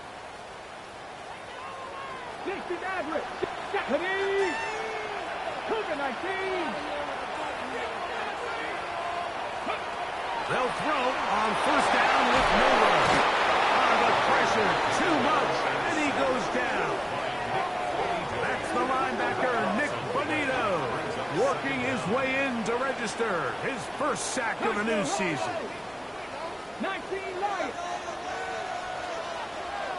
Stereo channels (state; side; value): identical; both; correlation 1.00